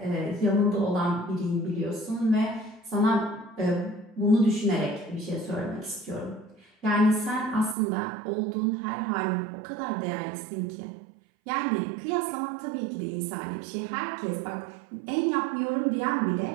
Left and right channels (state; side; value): drops out; left; at 7.8 s